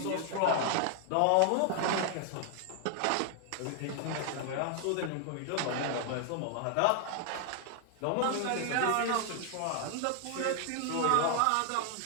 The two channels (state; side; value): different; both; correlation 0.00